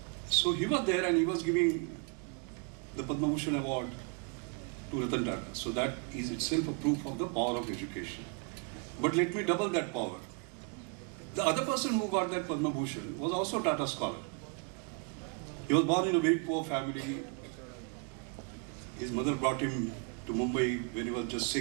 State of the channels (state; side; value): quieter; left; 35.8 dB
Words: So he was there and he was giving the Padma Bhushan award to Ratan Tata. So that is itself a proof of the power of education. But let me double that power. The other person who got that Padma Bhushan was also a Tata scholar. He was born in a very poor family. His mother brought him to Mumbai when he was just